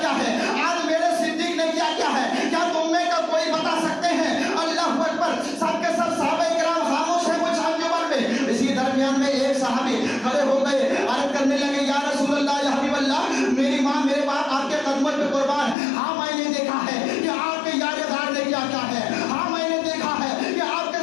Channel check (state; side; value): drops out; right; at 15.8 s